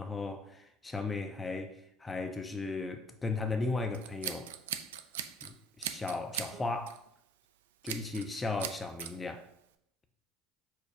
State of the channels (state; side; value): normal; both; correlation 0.59